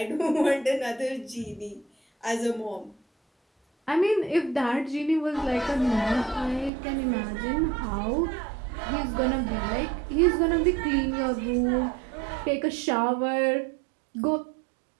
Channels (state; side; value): drops out; left; at 6.7 s